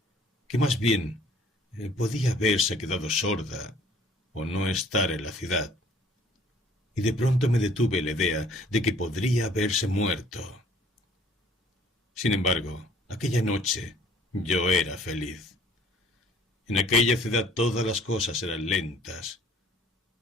que más bien podía haberse quedado sorda o no estar en la ciudad. Y de pronto me detuve la idea de que podría haberse muerto. Sin embargo, aquella noche yo era feliz. En aquella ciudad todas las cosas eran lentas.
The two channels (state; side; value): normal; both; correlation 0.56